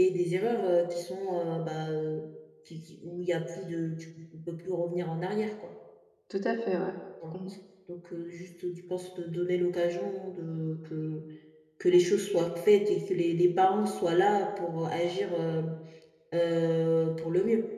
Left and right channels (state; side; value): identical; both; correlation 1.00